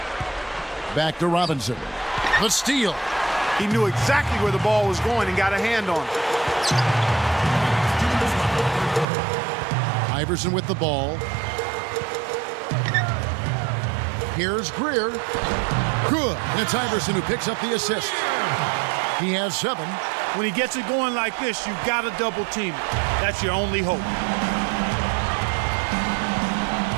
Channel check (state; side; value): drops out; left; at 9.1 s